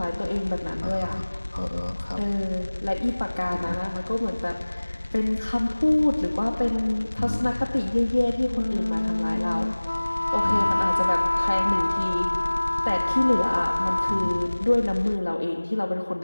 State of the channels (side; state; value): both; inverted; correlation -1.00